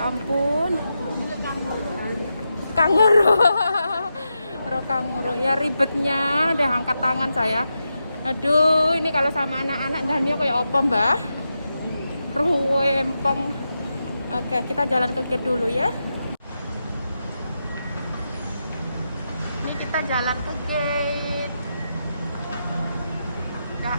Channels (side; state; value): both; inverted; correlation -0.88